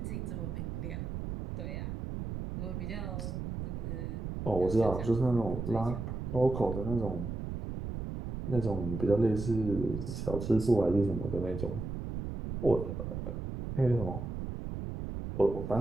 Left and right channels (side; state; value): right; noise; rumble, 5 dB below the sound